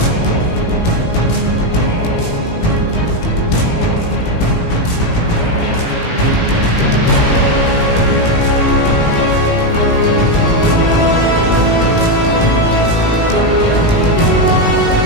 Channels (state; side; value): late; right; 18 ms